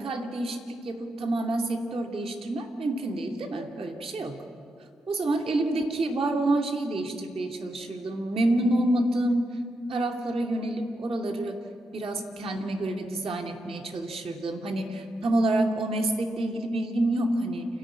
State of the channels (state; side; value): normal; both; correlation 0.84